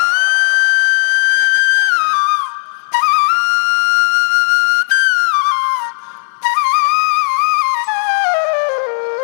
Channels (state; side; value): silent; right; digital silence